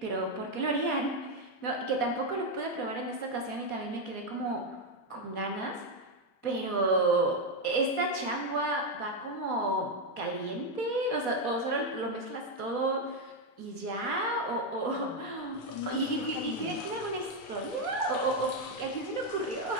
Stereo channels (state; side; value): late; right; 4.2 ms